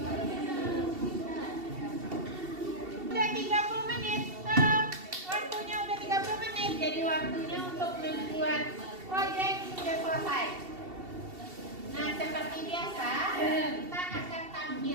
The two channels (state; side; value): late; left; 2.7 ms